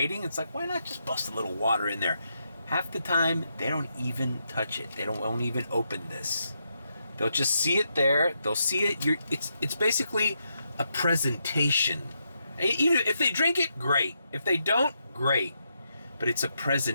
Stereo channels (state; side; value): inverted; both; correlation -0.81